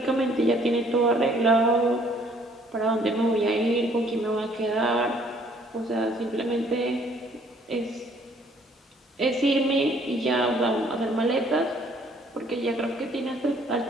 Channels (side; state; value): both; normal; correlation 0.61